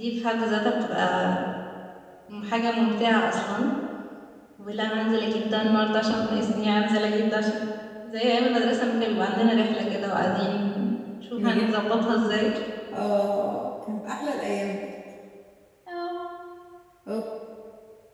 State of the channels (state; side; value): identical; both; correlation 1.00